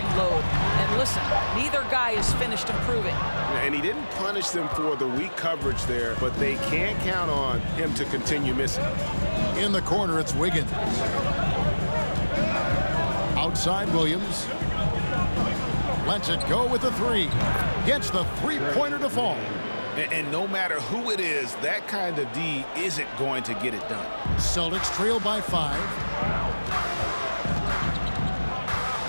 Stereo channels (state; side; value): inverted; both; correlation -1.00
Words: load. And listen, neither guy is finished improving. And he didn't punish them for the weak coverage there, but they can't count on him to continue missing. In the corner, it's Wiggins. Outside, Williams. Lets it go with the 3. Gets the 3-pointer to fall. And no matter who it is, that kind of D isn't going to get it done. Celtics trail by 5.